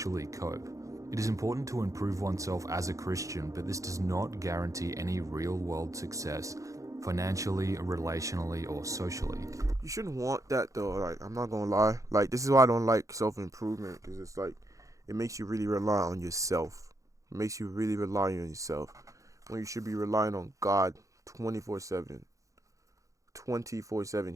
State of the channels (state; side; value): late; left; 0.16 ms